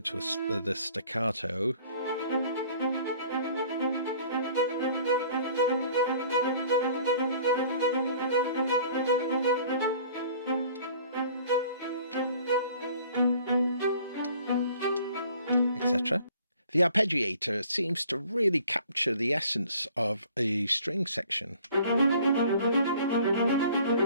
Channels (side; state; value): both; inverted; correlation -0.52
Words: to the staccato, etc. The arpeggiator seems to really capture the essence of a string section.